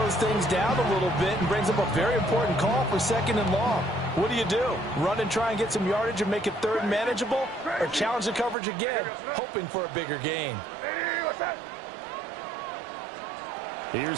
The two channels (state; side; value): drops out; left; at 8.6 s